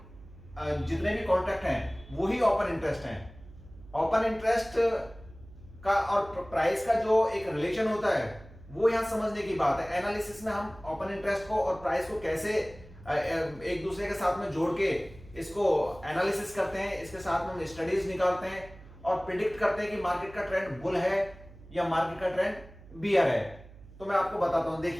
जितने भी कॉन्ट्रैक्ट हैं वही ओपन इंटरेस्ट हैं। ओपन इंटरेस्ट का और प्राइस का जो एक रिलेशन होता है वो यहां समझने की बात है। एनालिसिस में हम ओपन इंटरेस्ट को और प्राइस को कैसे एक दूसरे के साथ में जोड़ के इसको एनालिसिस करते हैं, इसके साथ में हम स्टडीज निकालते हैं और प्रिडिक्ट करते हैं कि मार्केट का ट्रेंड बुल है या मार्केट का ट्रेंड बियर है। तो मैं आपको बताता हूं,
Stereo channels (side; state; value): right; noise; hum, 20 dB below the sound